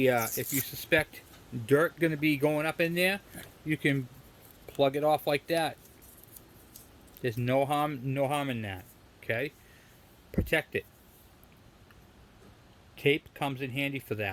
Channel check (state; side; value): identical; both; correlation 1.00